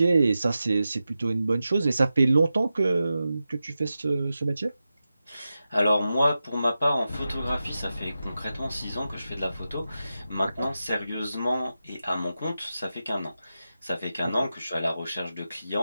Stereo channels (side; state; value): both; inverted; correlation -0.92